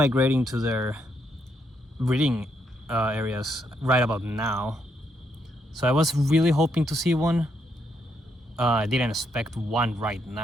to their breeding areas right about now. So I was really hoping to see one. I didn't expect one right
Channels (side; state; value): both; normal; correlation 0.76